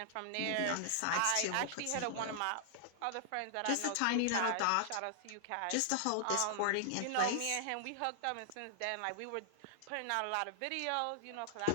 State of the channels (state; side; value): different; both; correlation -0.01